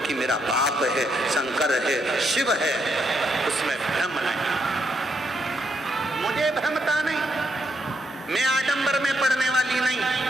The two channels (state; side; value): normal; both; correlation 0.78